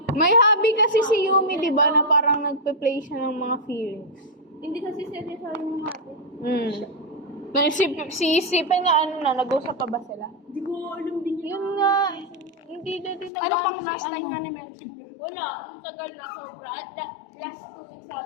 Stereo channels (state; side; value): drops out; right; at 13.3 s